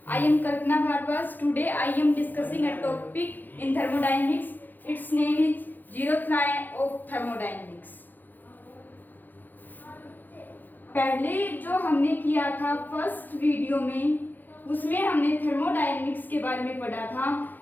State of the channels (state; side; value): late; right; 0.087 ms